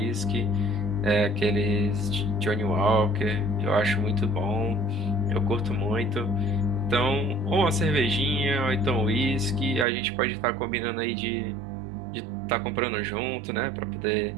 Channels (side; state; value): left; drops out; at 9.9 s